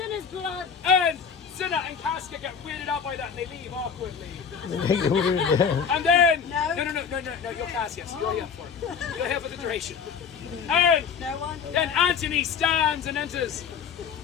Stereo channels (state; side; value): quieter; right; 6.6 dB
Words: his blood. And Cinna and Casca get weirded out by that and they leave awkwardly. And then, no, you're Cassius, you're here for it. You're here for the duration. And then Antony stands and enters.